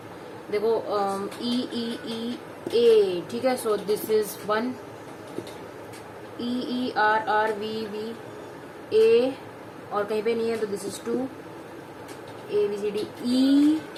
देखो ई ई ई ए, ठीक है। So this is 1, E E R R V V A, और कहीं पे नहीं है तो this is 2, A B C D E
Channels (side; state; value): both; identical; correlation 1.00